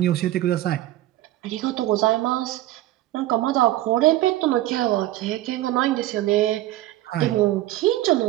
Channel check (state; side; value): quieter; left; 15.4 dB